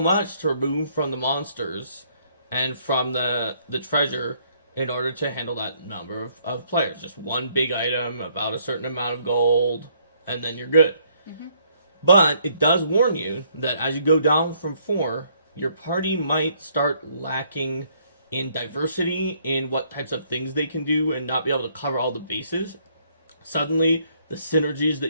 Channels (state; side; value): inverted; both; correlation -0.67